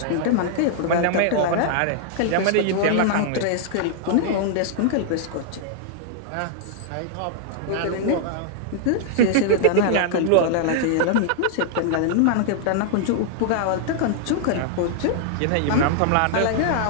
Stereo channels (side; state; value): both; different; correlation -0.01